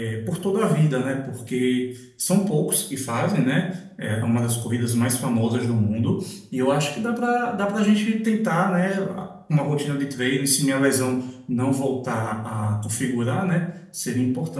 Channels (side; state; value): both; identical; correlation 1.00